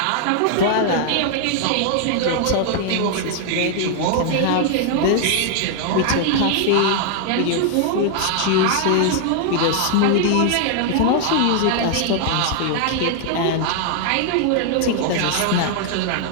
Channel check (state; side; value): different; both; correlation 0.00